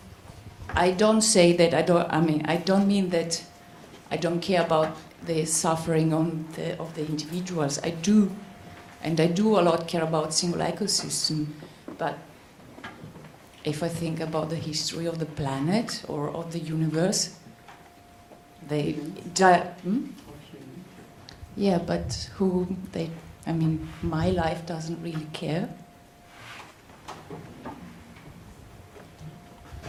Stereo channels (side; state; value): both; identical; correlation 1.00